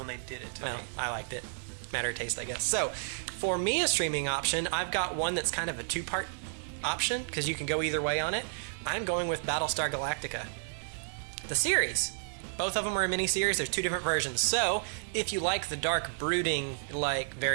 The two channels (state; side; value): silent; left; digital silence